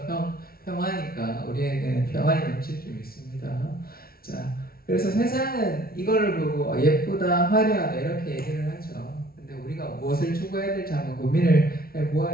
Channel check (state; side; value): late; right; 0.44 ms